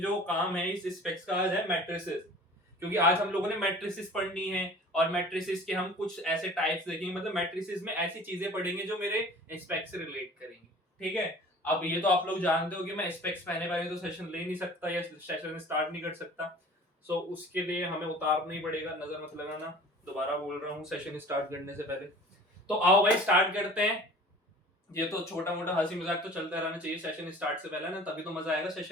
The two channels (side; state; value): both; normal; correlation 0.45